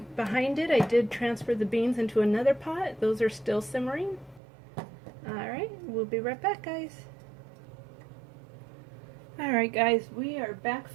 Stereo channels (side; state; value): left; drops out; at 4.4 s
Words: behind it, I did transfer the beans into another pot. Those are still simmering. Alright, we'll be right back, guys. Alright guys, we are back